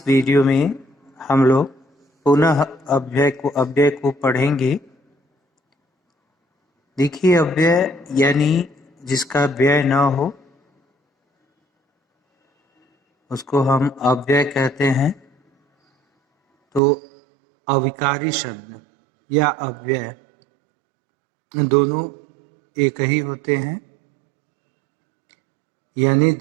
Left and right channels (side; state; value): left; drops out; at 16.8 s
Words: वीडियो में हम लोग पुनः अव्यय को पढ़ेंगे। देखिए, अव्यय यानी जिसका व्यय न हो उसको हम अव्यय कहते हैं। तो अविकारी शब्द या अव्यय दोनों एक ही होते हैं, यानी